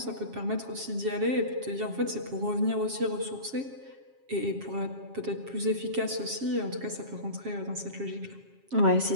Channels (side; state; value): left; late; 7.4 ms